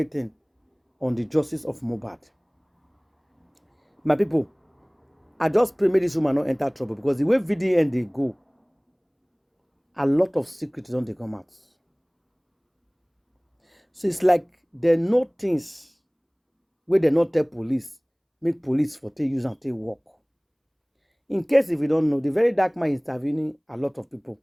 on the justice of Mohbad. My people, I just pray make this woman not enter trouble, because the way VDM they go, a lot of secrets don't they come out. So it's like they know things where they not tell police, make police for take use and take work. In case if you don't know, the very dark man is intervening a lot of people,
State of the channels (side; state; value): both; identical; correlation 1.00